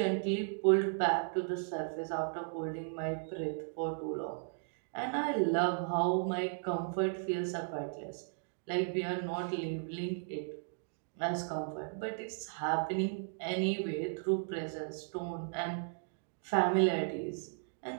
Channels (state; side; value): silent; left; digital silence